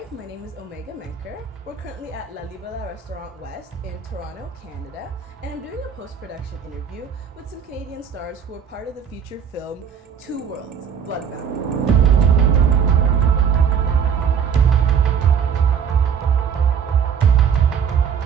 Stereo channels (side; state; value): left; quieter; 7.4 dB